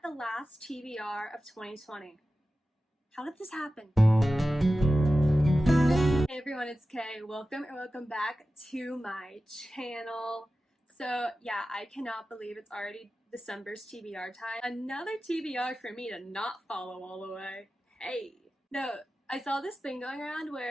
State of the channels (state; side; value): normal; both; correlation 0.94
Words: the last TBR of 2020. How did this happen? Hey everyone, it's Kay. Welcome back to my channel. So yeah, I cannot believe it's already December's TBR time. Another TBR for me to not follow all the way. Hey. No, I saw this thing going around